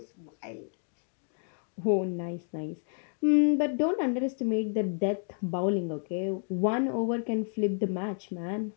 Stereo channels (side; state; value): right; silent; 58 dB below the other